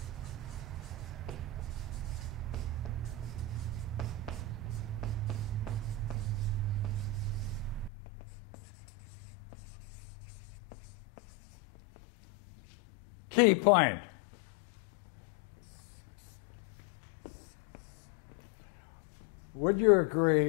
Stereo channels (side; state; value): right; drops out; at 7.9 s